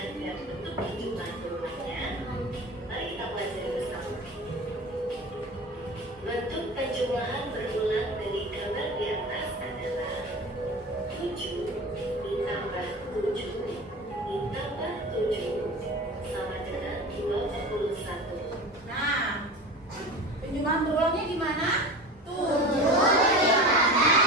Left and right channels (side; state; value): both; normal; correlation 0.33